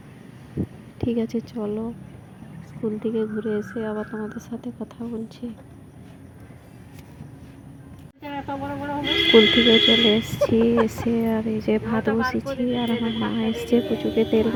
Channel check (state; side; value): identical; both; correlation 1.00